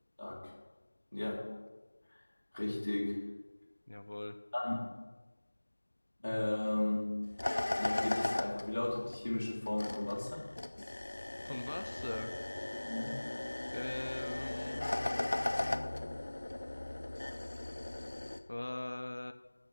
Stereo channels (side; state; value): both; inverted; correlation -1.00